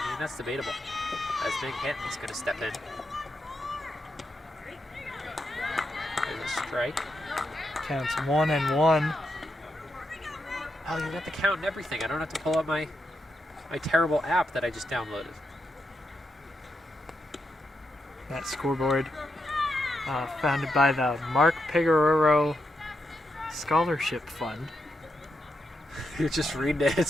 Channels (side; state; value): both; normal; correlation 0.84